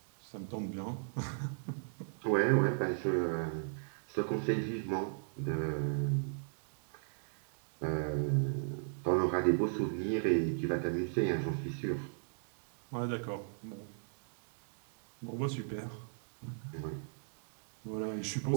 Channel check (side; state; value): left; silent; digital silence